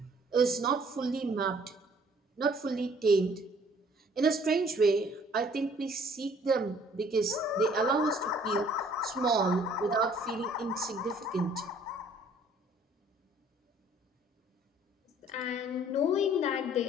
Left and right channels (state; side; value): normal; both; correlation 0.58